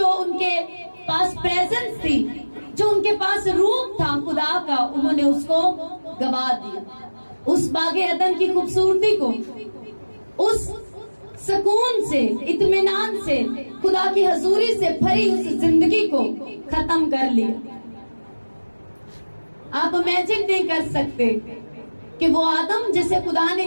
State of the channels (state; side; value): inverted; both; correlation -1.00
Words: ان کے پاس پریزنس تھی، جو ان کے پاس روپ تھا خدا کا، انہوں نے اس کو گوا دیا. اس باغ عدن کی خوبصورتی کو، اس سکون سے، اطمینان سے، خدا کی حضوری سے بھری اس زندگی کو ختم کر لیا. آپ امیجن نہیں کر سکتے کہ وہ آدم جسے خدا نے،